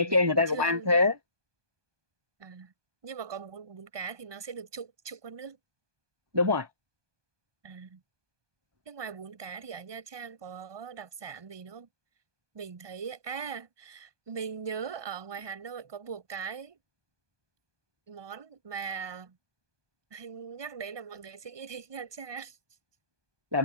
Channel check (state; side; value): late; left; 1.2 ms